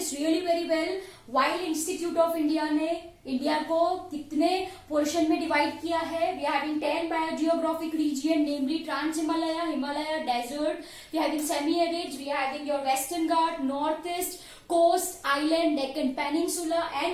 really very well. While Institute of India ने India को कितने portion में divide किया है? We are having 10 biogeographic region, namely Trans Himalaya, Himalaya Desert. We are having semi-arid. We are having your Western Ghat, Northeast, Coast, Island, Deccan Peninsula,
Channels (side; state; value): both; identical; correlation 1.00